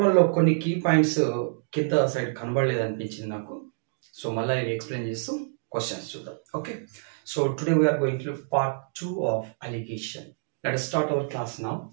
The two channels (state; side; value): silent; left; digital silence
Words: 1లో కొన్ని కీ పాయింట్స్ కింద సైడ్ కనబడలేదు అనిపించింది నాకు. సో మళ్ళీ ఇవి ఎక్స్ప్లెయిన్ చేస్తూ క్వశ్చన్స్ చూద్దాం. Okay, so today we are going to part 2 of allegation. Let us start our class now.